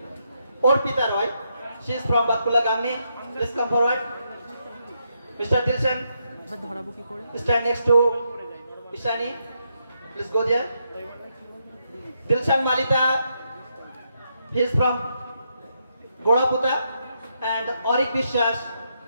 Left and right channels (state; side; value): inverted; both; correlation -0.79